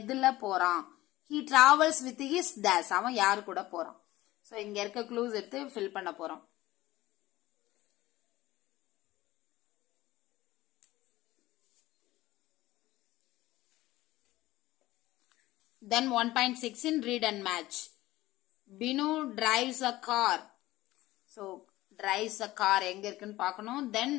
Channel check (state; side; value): quieter; right; 17.2 dB